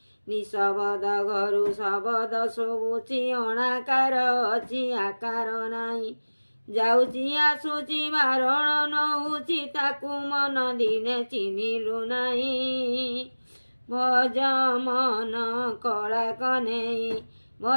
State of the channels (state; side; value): inverted; both; correlation -1.00